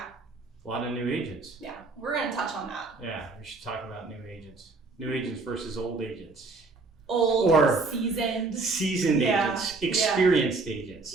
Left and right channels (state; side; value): quieter; left; 3.8 dB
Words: A lot of new agents. Yeah. We're going to touch on that. Yeah. We should talk about new agents. New agents versus old agents. Old or seasoned agents, experienced agents.